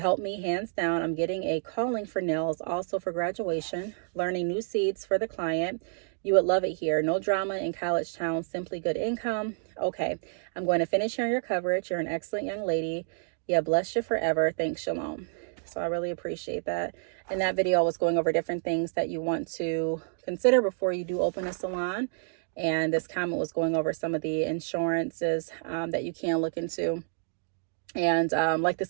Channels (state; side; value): silent; left; digital silence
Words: me hands down. I'm getting a calling for nails, also for graduation, learning new seeds for the client. You would love it here. No drama in college town, simply good income. Okay, I'm going to finish hearing your coverage. You're an excellent young lady. Yeah, bless you forever. Thanks, Shalom. So I really appreciate that. In that video, I was going over different things that you want to consider before you do open a salon. And this comment was going over some of the insurances that you can look into. And like